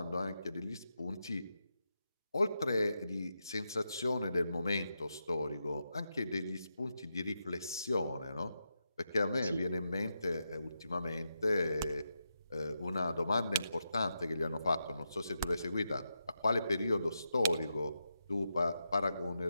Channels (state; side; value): inverted; both; correlation -0.85